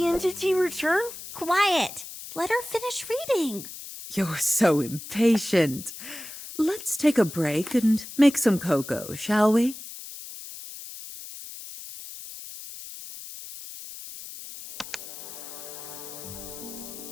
entity return? Quiet! Let her finish reading. You're so impatient. Let's take a break and make some cocoa, shall we?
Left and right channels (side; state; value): left; noise; hiss, 12 dB below the sound